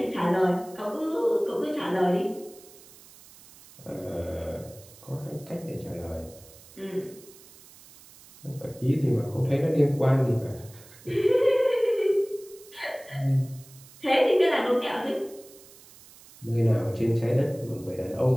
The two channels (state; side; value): noise; right; hiss, 22 dB below the sound